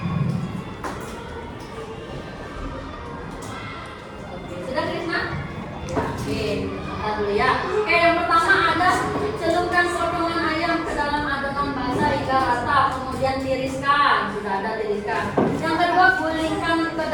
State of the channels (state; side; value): identical; both; correlation 1.00